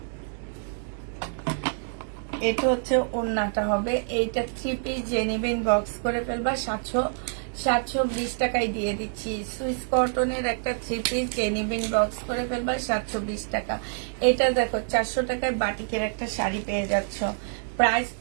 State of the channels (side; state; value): left; silent; digital silence